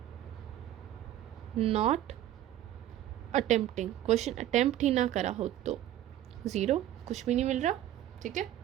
not attempting, question attempt ही ना करा हो तो 0, कुछ भी नहीं मिल रहा। ठीक है,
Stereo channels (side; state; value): left; quieter; 12.7 dB